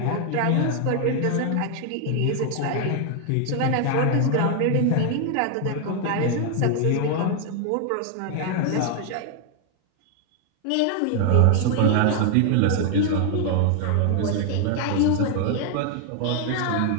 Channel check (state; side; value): different; both; correlation 0.00